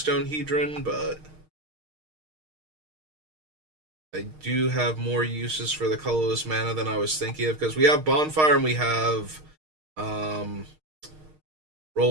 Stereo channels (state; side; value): late; left; 6.5 ms